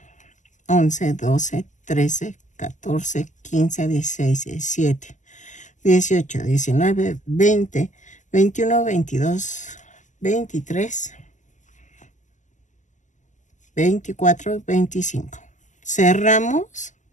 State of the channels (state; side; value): late; right; 0.36 ms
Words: 11, 12, 13, 14, 15, 16, 17, 18, 19, 20, 21, 22, 23, 24, 25. Cerramos